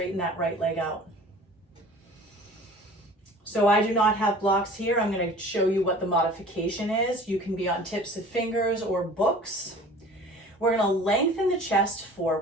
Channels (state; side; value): normal; both; correlation 0.44